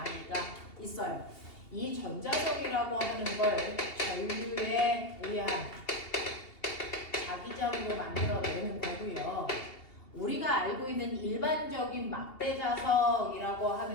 있어요. 이 전자석이라고 하는 걸 전류에 의한 자기장으로 만들어내는 거고요. 우리가 알고 있는 일반적인 막대자석이라고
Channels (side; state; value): right; late; 2.8 ms